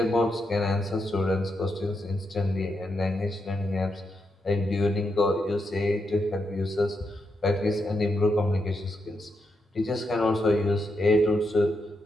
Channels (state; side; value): normal; both; correlation 0.83